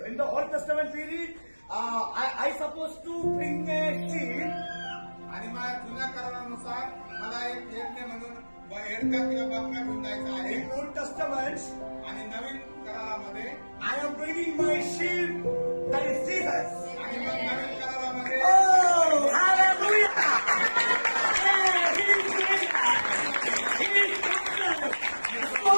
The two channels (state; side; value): inverted; both; correlation -1.00